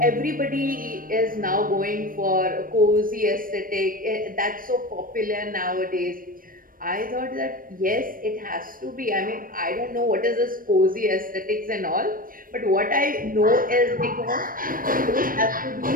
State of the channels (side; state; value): left; late; 0.41 ms